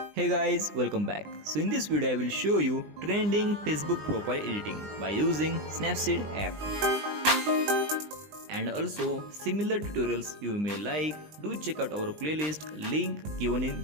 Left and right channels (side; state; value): left; late; 20 ms